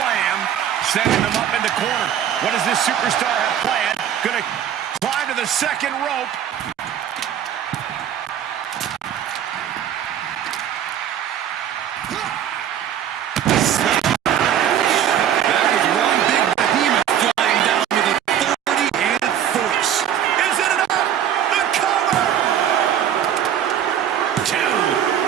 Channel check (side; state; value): left; quieter; 9.9 dB